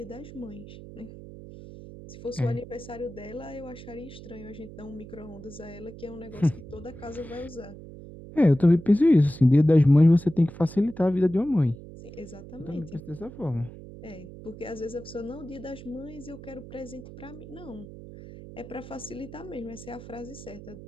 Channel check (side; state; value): right; noise; hum, 15 dB below the sound